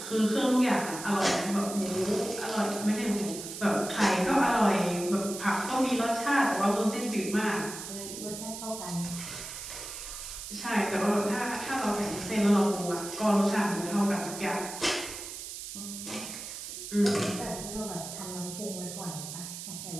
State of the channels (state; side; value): noise; right; hiss, 9 dB below the sound